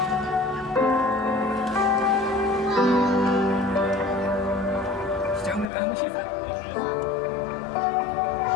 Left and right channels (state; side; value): drops out; right; at 5.7 s